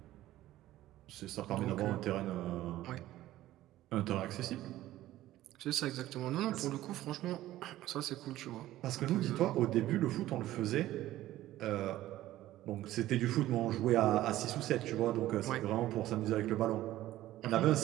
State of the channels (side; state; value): left; quieter; 14.9 dB